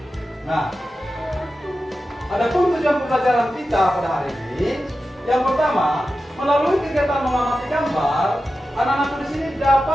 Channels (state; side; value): normal; both; correlation 0.92